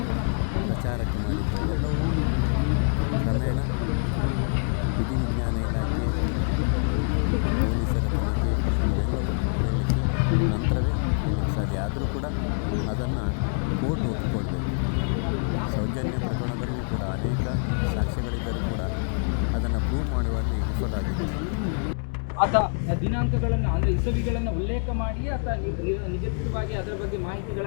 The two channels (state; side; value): silent; right; 61 dB below the other